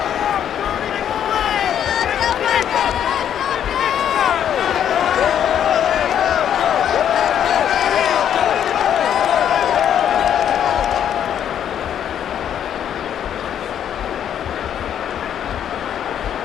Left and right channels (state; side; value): quieter; right; 9.6 dB